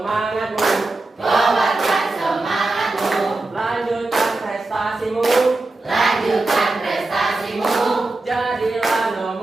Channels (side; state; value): left; quieter; 3.1 dB